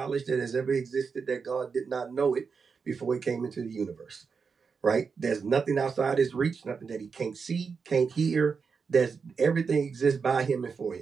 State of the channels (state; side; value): quieter; left; 5.5 dB